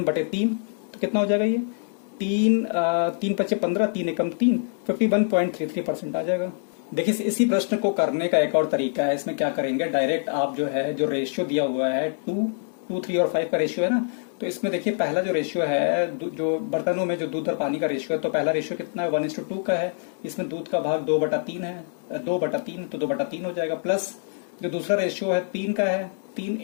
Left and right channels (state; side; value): silent; right; 62 dB below the other